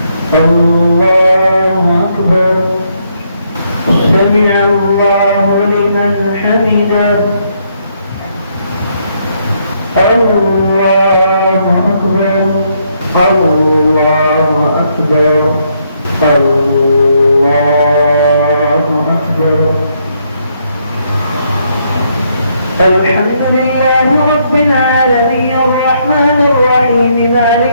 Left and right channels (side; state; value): both; inverted; correlation -0.74